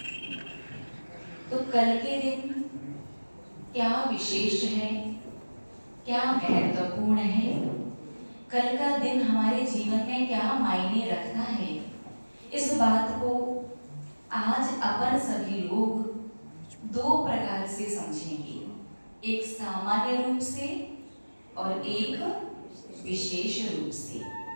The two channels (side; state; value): both; inverted; correlation -1.00